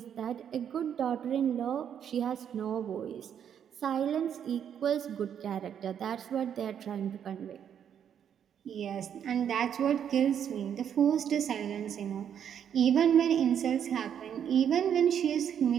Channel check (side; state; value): left; quieter; 8.7 dB